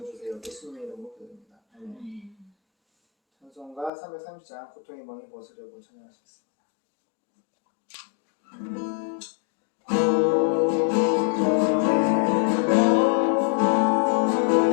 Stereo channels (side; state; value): right; drops out; at 3.9 s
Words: 예수님의 이름으로 기도드립니다. 아멘. 찬송가 330장 고통의 멍에 벗으려고 찬양하시겠습니다.